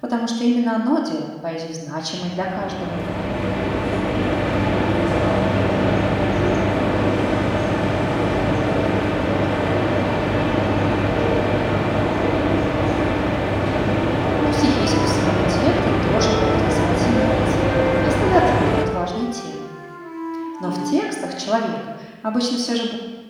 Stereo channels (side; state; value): both; identical; correlation 1.00